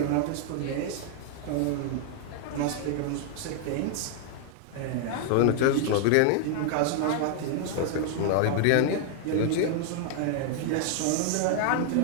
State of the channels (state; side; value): different; both; correlation 0.00